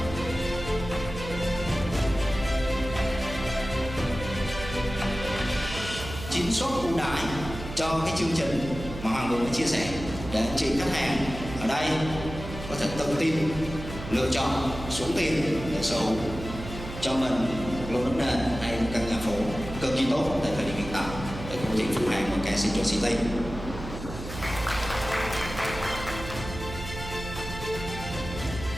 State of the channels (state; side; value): noise; right; hum, 10 dB below the sound